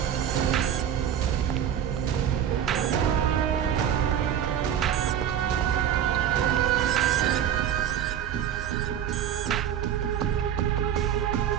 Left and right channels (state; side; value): quieter; left; 9.6 dB